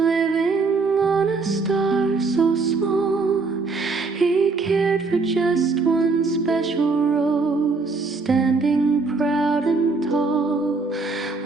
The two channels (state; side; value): quieter; left; 4.1 dB